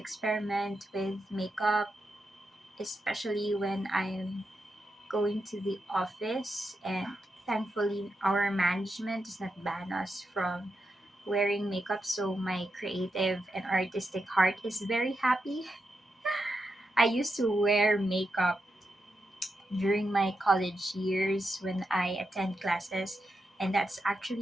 with makeup, especially when I'm going to the office, and thankfully our management does not ban us from wearing makeup, so my creative and artistic heart is very happy. I used to wear makeup during my college years when I attend classes, and that's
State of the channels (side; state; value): both; normal; correlation 0.86